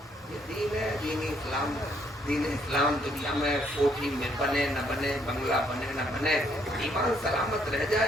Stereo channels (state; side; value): normal; both; correlation 0.69